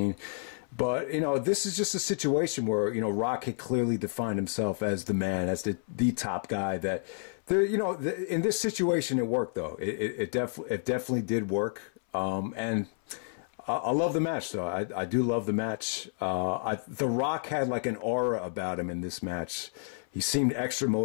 But, you know, this is just a situation where, you know, Rock had clearly defined himself as the man, as the top guy. That there, you know, in this situation, it worked though. It definitely did work. And I love the match though. I do love the match. The Rock had like an aura about him in this match. He seemed extra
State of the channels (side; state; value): right; silent; 57 dB below the other